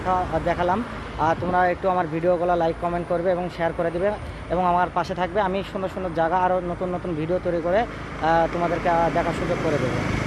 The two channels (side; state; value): both; identical; correlation 1.00